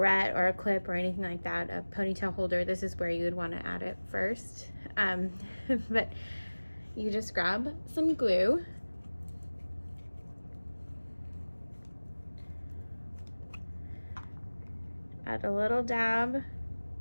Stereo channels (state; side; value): inverted; both; correlation -1.00